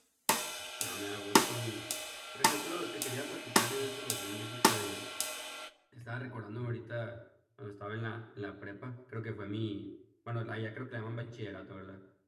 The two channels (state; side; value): identical; both; correlation 1.00